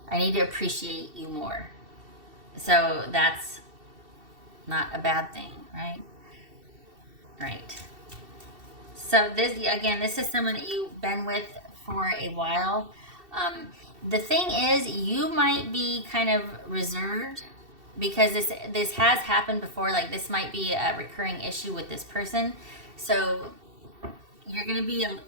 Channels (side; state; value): left; late; 2.7 ms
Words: I need to appreciate you more. So that's not a bad thing, right? Right. So this is someone that you've been with for a while. The thing is, you might be kind of reserved, because this has happened before. Like, this might be a recurring issue with this person. So you're going to be